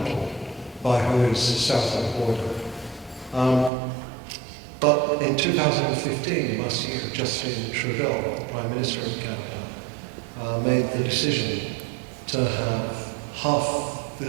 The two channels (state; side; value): drops out; left; at 3.7 s